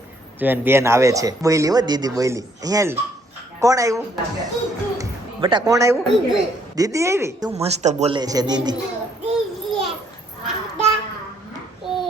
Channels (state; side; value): normal; both; correlation 0.67